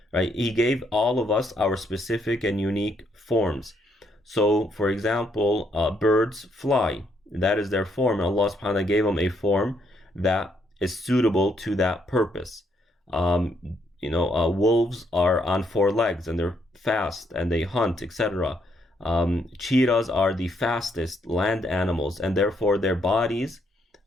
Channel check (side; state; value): both; normal; correlation 0.73